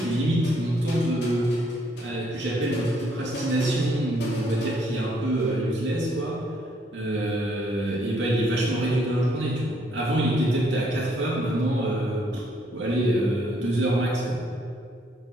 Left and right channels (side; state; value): both; normal; correlation 0.69